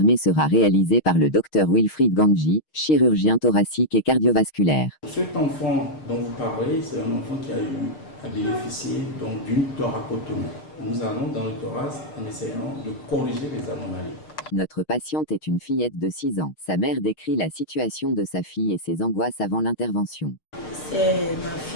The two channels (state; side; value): late; right; 6.4 ms